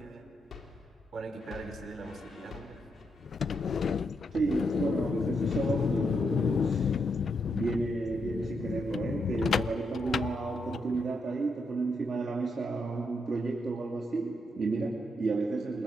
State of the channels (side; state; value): both; normal; correlation 0.80